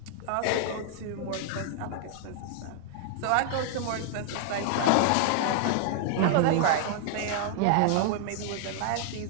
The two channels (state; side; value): different; both; correlation -0.01